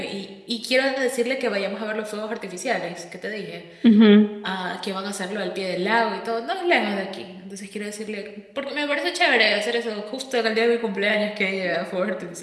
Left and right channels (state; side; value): identical; both; correlation 1.00